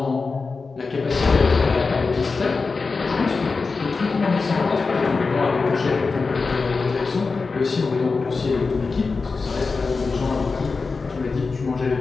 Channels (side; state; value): right; quieter; 4.3 dB